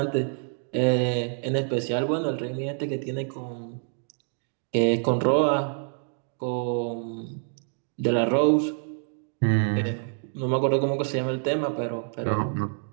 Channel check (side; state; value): left; silent; 60 dB below the other